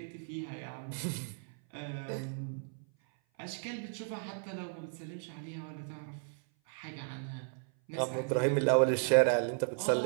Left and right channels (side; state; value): left; silent; 55 dB below the other